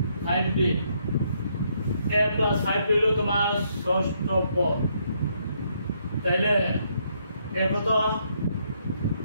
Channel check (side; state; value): both; inverted; correlation -0.73